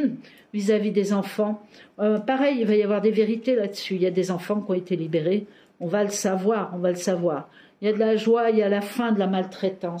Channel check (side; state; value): both; identical; correlation 1.00